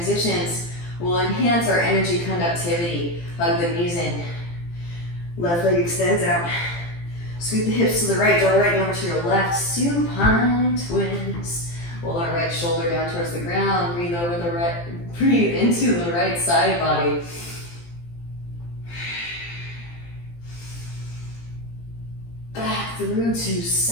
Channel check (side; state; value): right; late; 17 ms